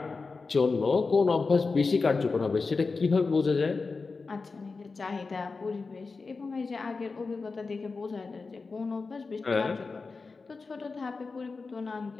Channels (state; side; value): quieter; right; 4.2 dB